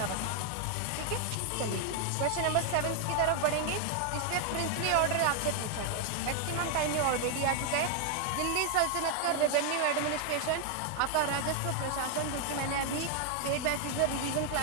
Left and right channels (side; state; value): both; different; correlation 0.00